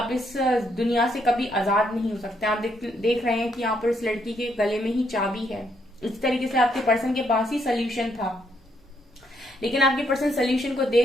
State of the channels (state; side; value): normal; both; correlation 0.74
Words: इस दुनिया से कभी आजाद नहीं हो सकते। आप देख रहे हैं कि यहाँ पर इस लड़की के गले में ही चाबी है। इस तरीके से आपके पर्सन के पास ही सोल्यूशन था, लेकिन आपके पर्सन सोल्यूशन को